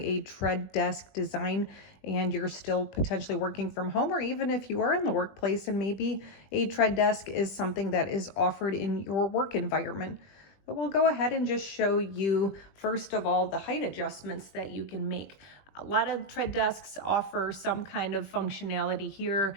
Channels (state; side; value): late; right; 20 ms